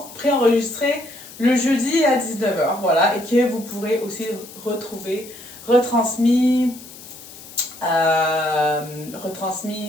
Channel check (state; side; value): noise; left; hiss, 17 dB below the sound